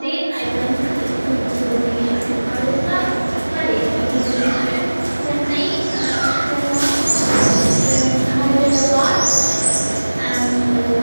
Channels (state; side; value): inverted; both; correlation -1.00